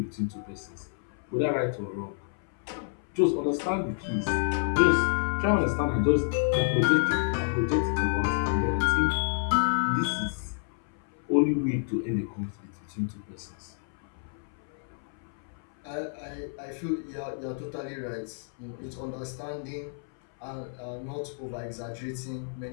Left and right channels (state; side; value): silent; right; 58 dB below the other